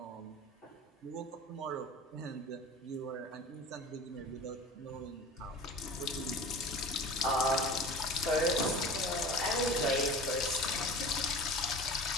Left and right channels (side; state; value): both; normal; correlation 0.37